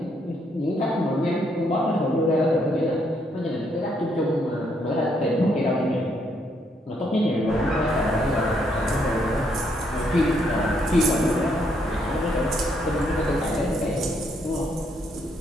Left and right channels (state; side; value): normal; both; correlation 0.73